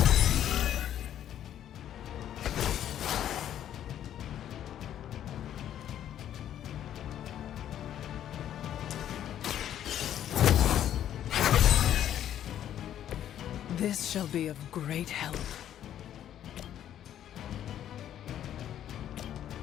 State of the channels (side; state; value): right; quieter; 10.8 dB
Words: This shall be of great help.